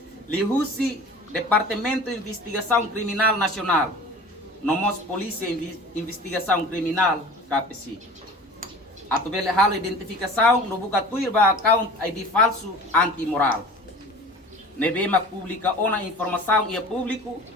lihusi Departamento de Investigação Criminal Nacional, nomos Polícia Investigação Criminal, KPC. Atubele halo identificação no buka tuir ba account ID falso antimoral. Nebema publica ona informação e público,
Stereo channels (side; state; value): both; normal; correlation 0.40